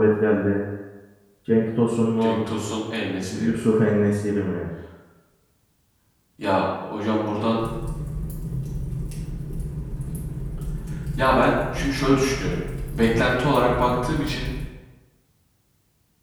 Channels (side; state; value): both; identical; correlation 1.00